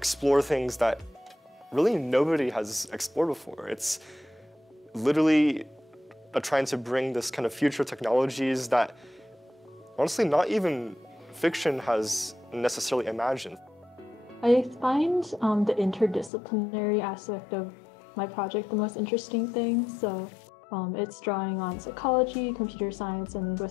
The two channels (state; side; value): drops out; right; at 16.3 s